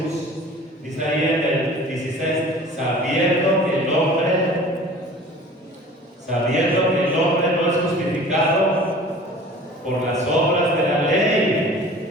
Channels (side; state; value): both; normal; correlation 0.44